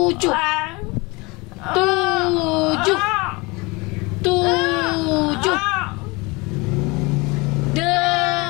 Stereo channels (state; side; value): quieter; right; 25.5 dB